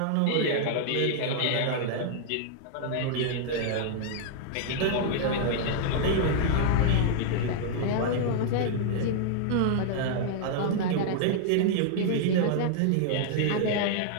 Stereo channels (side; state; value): both; different; correlation -0.01